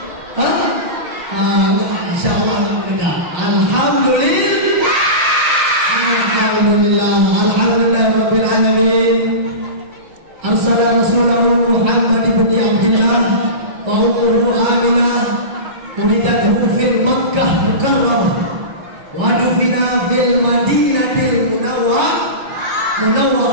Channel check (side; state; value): left; late; 6.5 ms